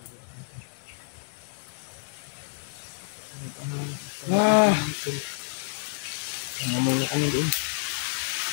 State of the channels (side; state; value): right; silent; 59 dB below the other